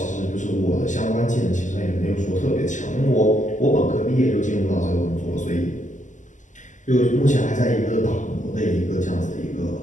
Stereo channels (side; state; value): right; late; 0.36 ms